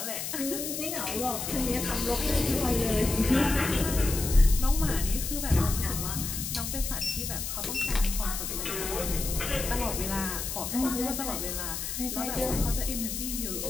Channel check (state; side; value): noise; left; hiss, 4 dB below the sound